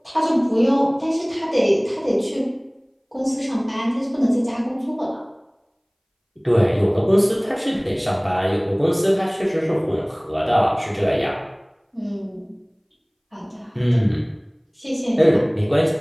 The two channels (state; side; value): identical; both; correlation 1.00